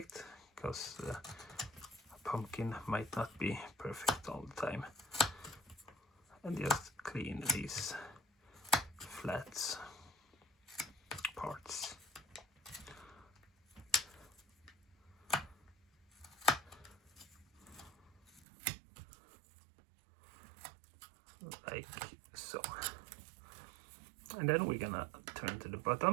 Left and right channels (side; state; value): left; drops out; at 18.4 s